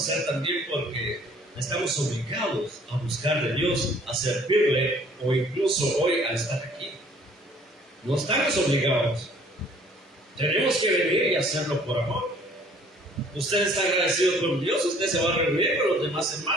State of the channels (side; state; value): both; normal; correlation 0.56